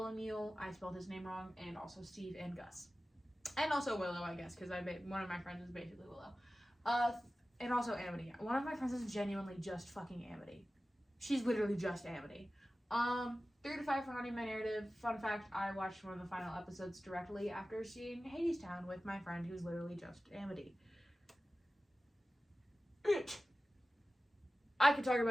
I spelled his name wrong, and also Steve and Gus. And also Willow, I guess, because one of my friends is basically Willow. And also Amity. One of my friends is genuinely just fucking Amity. She's literally just Amity. 3 to 5 for haunting my narrative. Fun fact, I watched one of the final episodes directly after seeing Hadestown with my friend who's literally just Amity. I could talk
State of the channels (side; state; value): both; normal; correlation 0.95